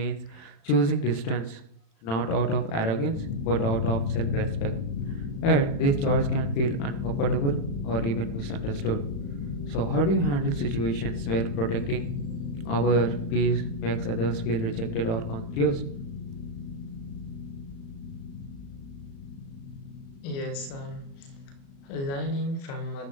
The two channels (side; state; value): right; late; 35 ms